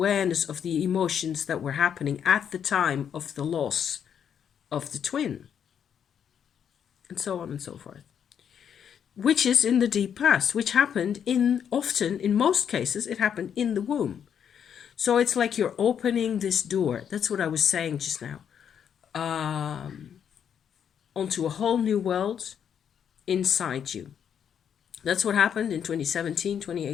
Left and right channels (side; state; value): right; quieter; 8.3 dB